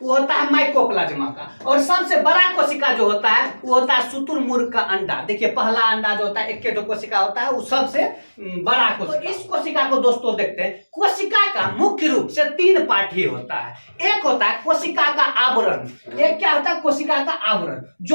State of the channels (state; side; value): inverted; both; correlation -1.00